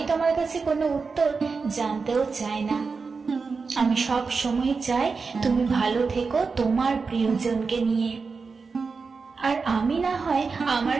তোমার কাছে কোনো উত্তর জানতেও চাই না। আমি সব সময় চাই তুমি ভালো থেকো তোমার প্রিয়জনকে নিয়ে, আর আমি না হয় আমার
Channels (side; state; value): left; quieter; 4.7 dB